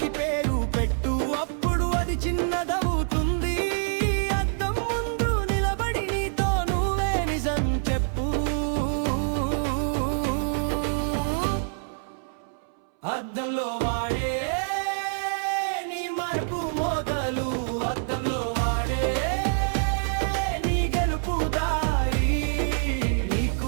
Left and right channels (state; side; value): silent; left; 61 dB below the other